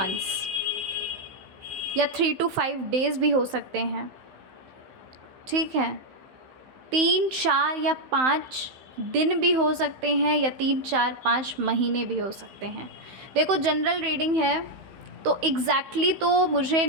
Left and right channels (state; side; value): late; left; 15 ms